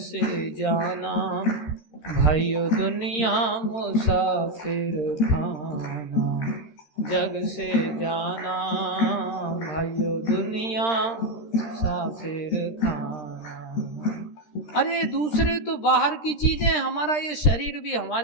जाना भाइयों दुनिया मुसाफिर खाना, जग से जाना भाइयों दुनिया मुसाफिर खाना। अरे दूसरे तो बाहर की चीजें, हमारा ये शरीर भी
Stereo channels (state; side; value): late; right; 13 ms